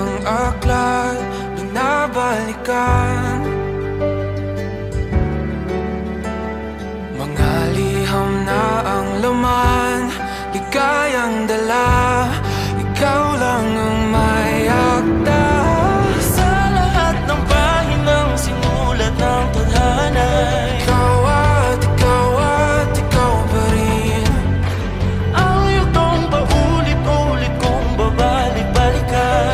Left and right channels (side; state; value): both; identical; correlation 1.00